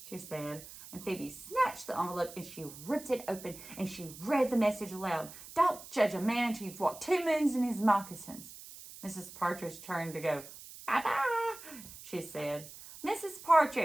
She said. And Phoebe snatched the envelope and she ripped it open and she read the message aloud. Don't judge a man until you've walked 2 moons in his moccasins. Mrs. Partridge turned to go. Bye-bye, she said. Mrs.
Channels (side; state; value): right; noise; hiss, 15 dB below the sound